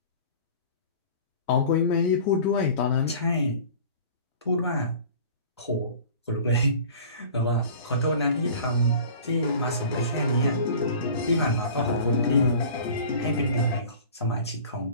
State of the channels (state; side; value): inverted; both; correlation -0.43